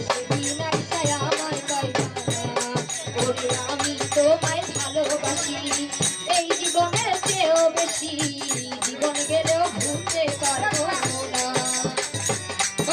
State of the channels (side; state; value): both; identical; correlation 1.00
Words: সেদিন আইসা আমায় পাইবা না ওরে আমি তোমায় ভালোবাসি এই জীবনের চেয়েও বেশি জীবন গেলেও ভুলতে পারবো না